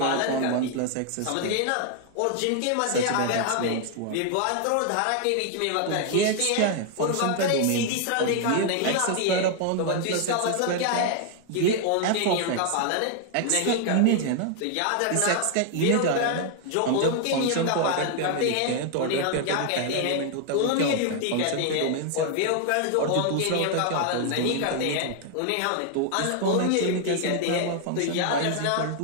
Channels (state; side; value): different; both; correlation 0.00